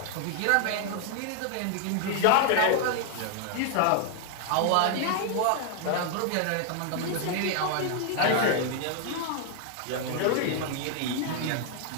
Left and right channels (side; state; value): both; different; correlation 0.00